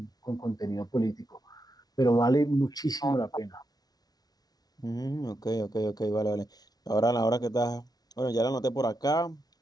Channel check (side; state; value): right; late; 0.19 ms